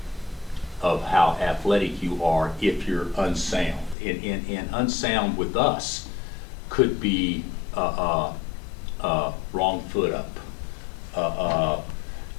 how athletic you are if you're unsound. And unsound with us could be wrong foot up.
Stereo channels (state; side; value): drops out; right; at 4.0 s